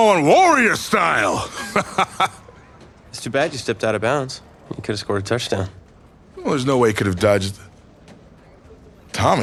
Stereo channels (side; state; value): both; identical; correlation 1.00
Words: warrior style. It's too bad you stepped out of bounds. You could have scored a touchdown. Well, there's no way he could have dodged.